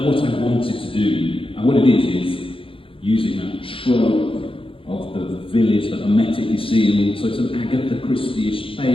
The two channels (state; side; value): late; right; 0.26 ms